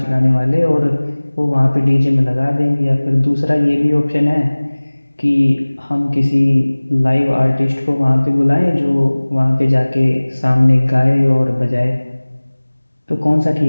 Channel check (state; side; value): inverted; both; correlation -1.00